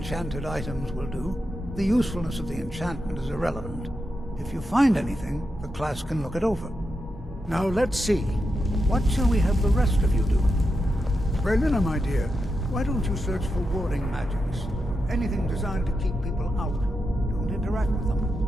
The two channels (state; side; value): normal; both; correlation 0.87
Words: items will do. The usefulness of the enchantment is irrelevant. If you find anything, the class can look it over. Now let's see. What shall we have the rest of you do? Berlina, my dear, why don't you search for warding magics? Anything designed to keep people out. Don't interact with them,